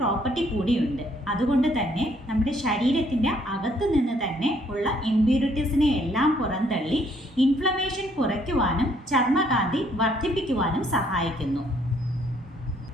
കൂടിയുണ്ട്. അതുകൊണ്ട് തന്നെ നമ്മുടെ ശരീരത്തിൻ്റെ അകത്ത് നിന്ന് തന്നെ ഉള്ള ഇംപ്യൂരിറ്റീസിനെ എല്ലാം പുറന്തള്ളി ഇൻഫ്ലമേഷൻ കുറയ്ക്കുവാനും ചർമ്മകാന്തി വർദ്ധിപ്പിക്കുവാനും സഹായിക്കുന്നു.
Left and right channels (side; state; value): both; normal; correlation 0.66